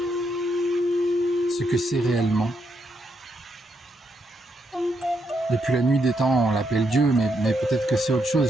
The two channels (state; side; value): normal; both; correlation 0.78